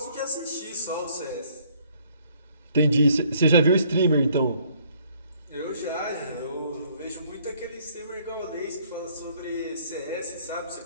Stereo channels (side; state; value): both; inverted; correlation -0.63